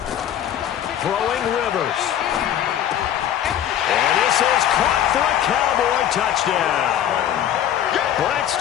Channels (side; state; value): right; quieter; 10.6 dB